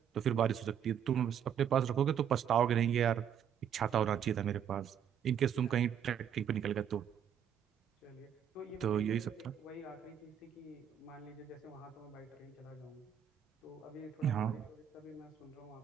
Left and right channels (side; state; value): left; quieter; 8.7 dB